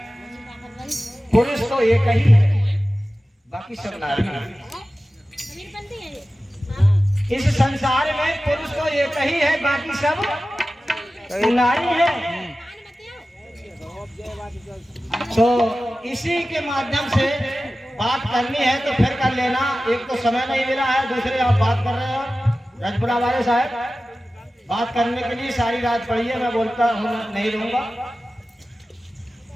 पुरुष तो एक ही है, बाकी सब नारी है। इस संसार में पुरुष तो एक ही है, बाकी सब नारी है। तो इसी के माध्यम से बात करनी है तो फिर कर लेना। एक तो समय नहीं मिला है, दूसरे आप बात कर रहे हो रजपुरा वाले साहब, बात करने के लिए सारी रात पड़ी है, मैं बोलता हूँ नहीं रहूंगा।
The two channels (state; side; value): normal; both; correlation 0.95